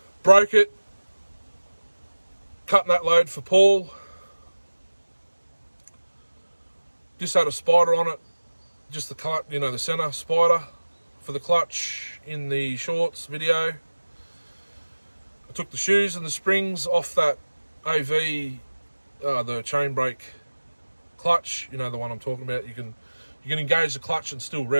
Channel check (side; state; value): both; inverted; correlation -1.00